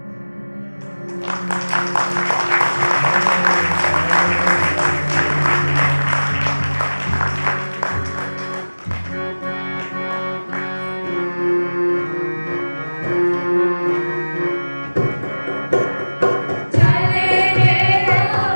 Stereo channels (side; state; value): both; inverted; correlation -1.00